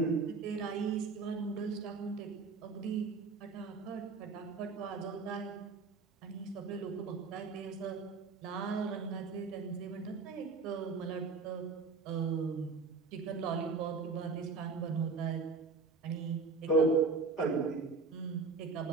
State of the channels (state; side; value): quieter; left; 4.3 dB